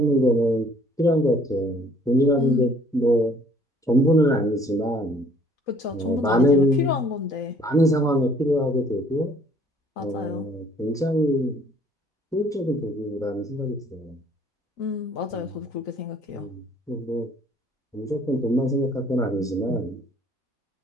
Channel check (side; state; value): both; normal; correlation 0.58